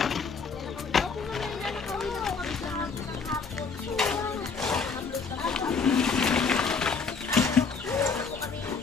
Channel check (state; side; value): quieter; right; 5.0 dB